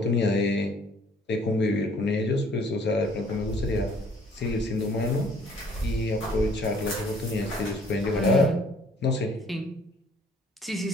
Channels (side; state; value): both; normal; correlation 0.58